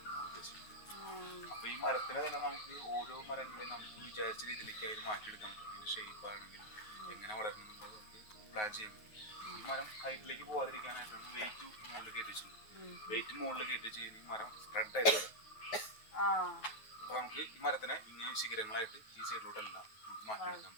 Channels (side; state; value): right; late; 9.4 ms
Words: നമ്മൾ ഉദ്ദേശിക്കുന്നത്. അപ്പോൾ ഈ മരത്തിനെ തന്നെ നമുക്ക് ഓരോ മരങ്ങളെയും നമുക്ക് വിചാരിച്ച രീതിയിലേക്ക് അതിന് മാറ്റിയെടുക്കാൻ പറ്റും. അതിൻ്റെ ഷേപ്പ് ആണെങ്കിലും എങ്ങനെ വളരണം എന്നുള്ളത് നമുക്ക് പ്ലാൻ ചെയ്യാൻ പറ്റും. ഈ മരം ഹൈറ്റിലേക്ക് പോകാതിരിക്കാനായിട്ടാണ് വെയിറ്റ് മുകളിൽ കയറ്റിച്ചുള്ളത്. വെയിറ്റ് മുകളിൽ കയറ്റി ചെയ്യുന്ന ഈ മരം സ്പ്രെഡ് ആയിട്ട് വരും. അപ്പോൾ നമുക്ക് ഈ മരത്തിനെ ഇങ്ങനെ ശിഖരങ്ങളായിട്ട് ഈ സൈഡിലോട്ടെല്ലാം നമുക്ക് മാറ്റിയെടുക്കാൻ